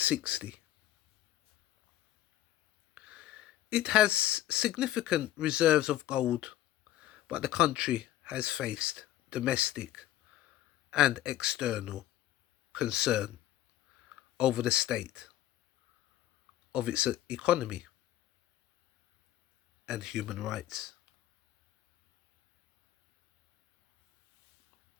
It has significant reserves of gold, but the country has faced domestic and external concern over the state of its economy and human rights.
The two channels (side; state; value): right; quieter; 13.6 dB